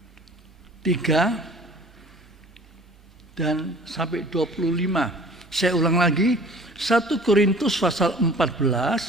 dan sampai 25. Saya ulang lagi, 1 Korintus pasal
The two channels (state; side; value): normal; both; correlation 0.48